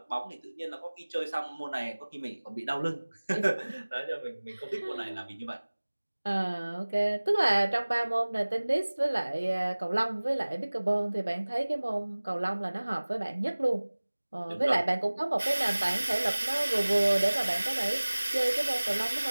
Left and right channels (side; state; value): both; inverted; correlation -1.00